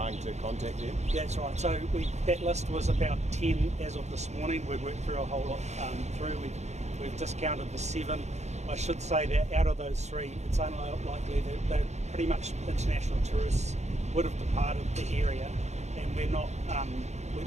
to contact them? That's right. So that list was about 10 as of this morning. We've worked through a whole lot through. We've discounted the 7. I should say that out of those 3, it's unlikely that they're pretty much international tourists would have departed the area, and we're not. We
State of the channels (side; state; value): left; late; 0.33 ms